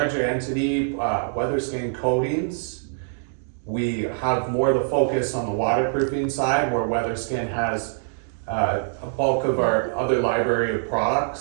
entity, Weatherskin Coatings. We have more the focus on the waterproofing side, where Weatherskin has a bulk of our other library of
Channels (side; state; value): left; silent; digital silence